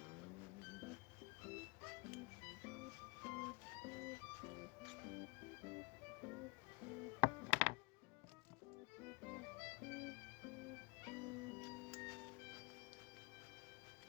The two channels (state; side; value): quieter; right; 26.7 dB